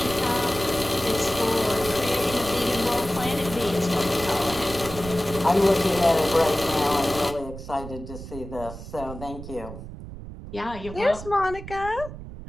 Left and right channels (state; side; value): noise; right; rumble, 12 dB below the sound